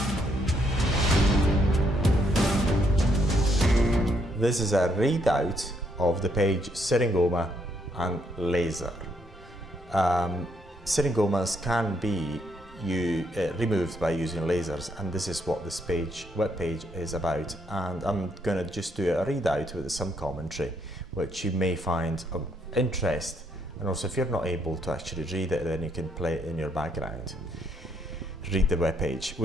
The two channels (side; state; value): both; normal; correlation 0.73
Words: This is a readout of the page Syringoma and laser. Syringomas can be removed by using lasers, and this is what this web page is about. And I'm going to just do a readout with some commentary, which you may find of interest. And also, if you're not able to actually read it, then you can play it in your background. Read the web page.